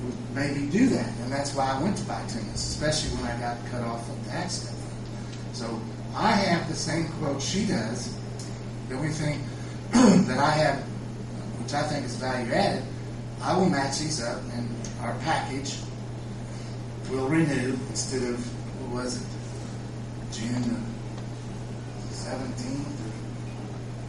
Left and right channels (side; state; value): both; identical; correlation 1.00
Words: would maybe do that, and that's why I went to bituminous, especially when I got cut off of the accident. So I have the same quote she does. The only thing that I have, which I think is value added, I will match these up, and our package will renew instead of, what was it, June 17th?